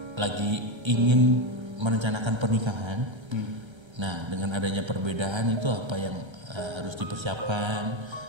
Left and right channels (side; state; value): left; late; 1.3 ms